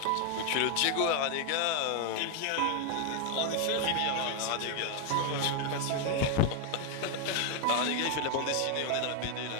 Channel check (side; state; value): both; different; correlation 0.01